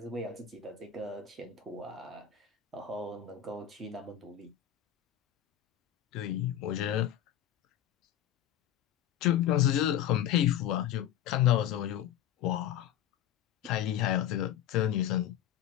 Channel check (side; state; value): right; quieter; 10.9 dB